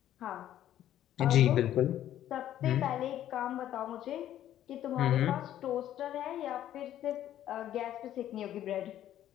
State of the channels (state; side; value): quieter; right; 11.9 dB